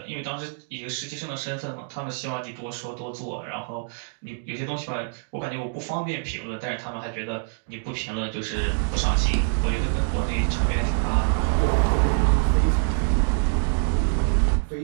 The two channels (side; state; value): left; silent; digital silence